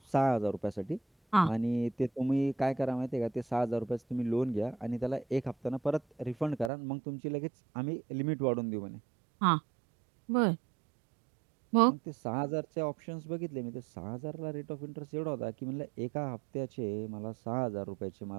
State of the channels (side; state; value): left; drops out; at 6.7 s